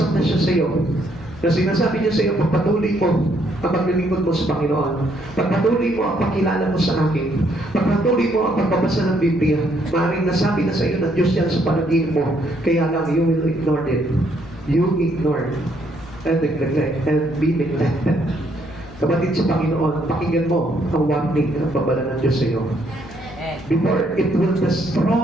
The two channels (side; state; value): left; noise; hum, 19 dB below the sound